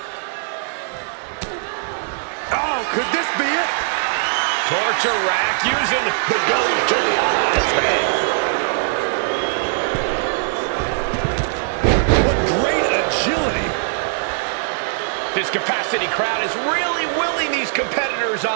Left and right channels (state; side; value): silent; left; digital silence